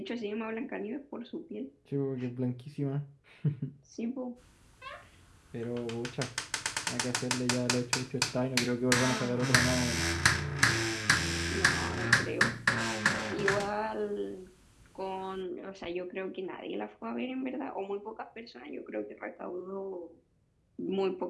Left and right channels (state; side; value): identical; both; correlation 1.00